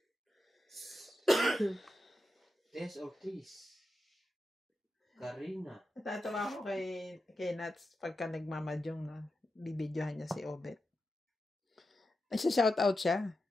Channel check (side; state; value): both; normal; correlation 0.89